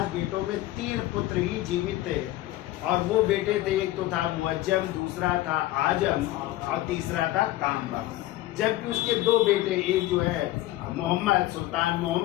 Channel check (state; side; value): quieter; right; 16.1 dB